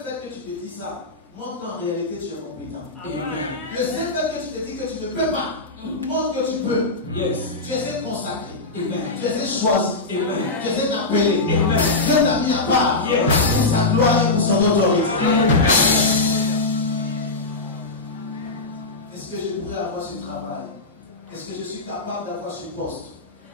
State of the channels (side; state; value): right; quieter; 3.2 dB